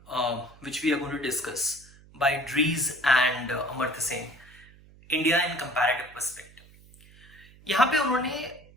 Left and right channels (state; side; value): noise; right; hum, 24 dB below the sound